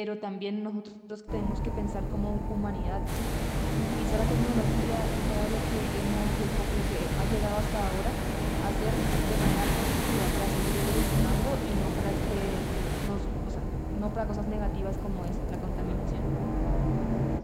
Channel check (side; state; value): both; identical; correlation 1.00